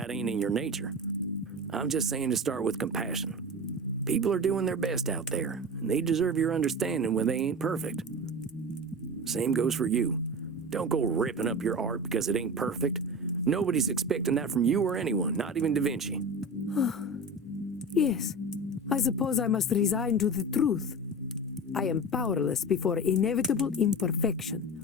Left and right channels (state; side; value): normal; both; correlation 0.29